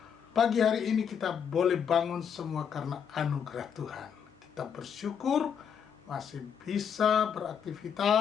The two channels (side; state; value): right; quieter; 7.6 dB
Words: Pagi hari ini kita boleh bangun semua karena anugerah Tuhan. Kita bersyukur masih bisa